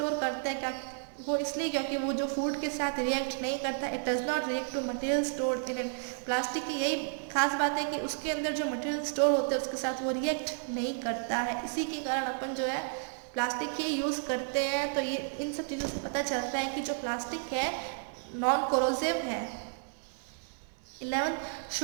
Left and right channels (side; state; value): left; silent; 56 dB below the other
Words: करते हैं, क्या वो इसलिए क्योंकि वो जो फूड के साथ रिएक्ट नहीं करता, it does not react to material stored in it. Plastic की यही खास बात है कि उसके अंदर जो मटेरियल स्टोर होते हैं उसके साथ वो रिएक्ट नहीं करता है। इसी के कारण अपन जो है प्लास्टिक ही यूज़ करते हैं। तो ये इन सब चीज़ों से पता चलता है कि जो प्लास्टिक है नॉन कोरोसिव है। 11th,